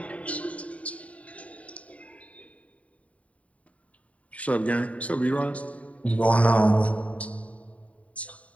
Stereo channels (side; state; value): right; late; 0.066 ms